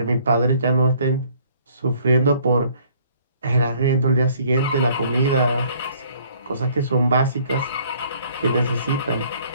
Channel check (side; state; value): both; inverted; correlation -0.60